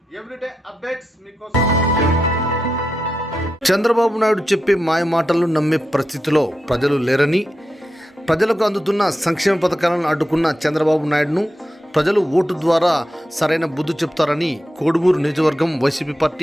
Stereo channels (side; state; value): both; normal; correlation 0.87